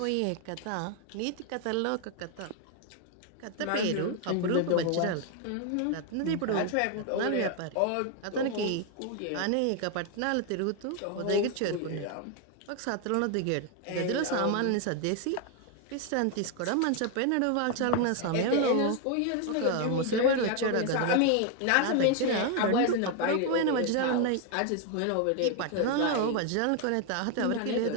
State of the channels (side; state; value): both; different; correlation 0.01